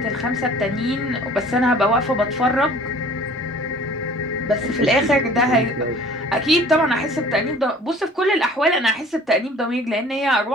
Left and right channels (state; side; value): normal; both; correlation 0.49